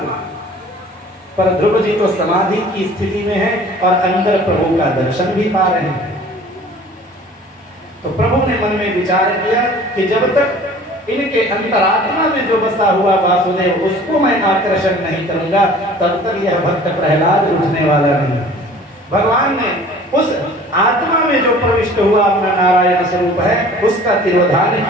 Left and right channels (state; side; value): normal; both; correlation 0.47